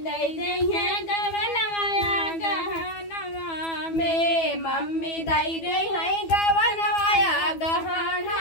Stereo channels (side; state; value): right; late; 12 ms